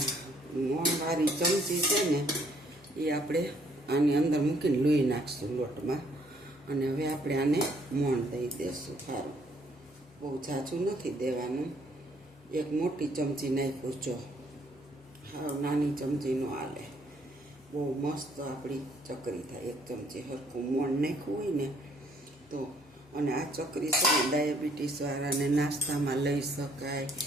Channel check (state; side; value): normal; both; correlation 0.65